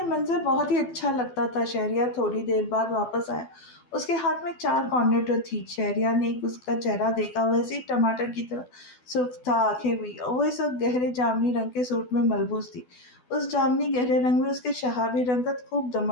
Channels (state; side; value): late; right; 12 ms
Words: منظر بہت ہی اچھا لگتا تھا۔ شہریار تھوڑی دیر بعد واپس آیا۔ اس کے ہاتھ میں 4 کارنیٹو تھی۔ شہریار نے اس کا چہرہ دیکھا، ویسے ہی ٹماٹر کی طرح سرخ تھا، آنکھیں بھی۔ وہ اس وقت گہرے جامنی رنگ کے سوٹ میں ملبوس تھی۔ اس جامنی گہرے رنگ میں اس کے شہابی رنگت خوب